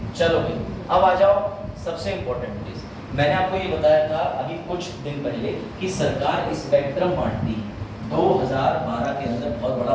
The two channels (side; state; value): both; identical; correlation 1.00